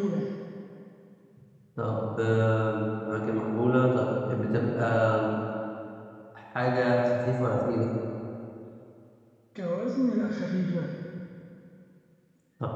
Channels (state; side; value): identical; both; correlation 1.00